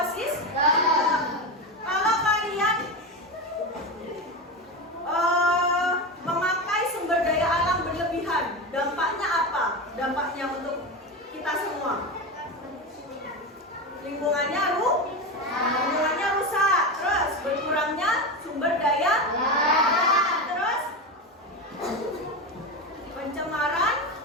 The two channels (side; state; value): both; normal; correlation 0.19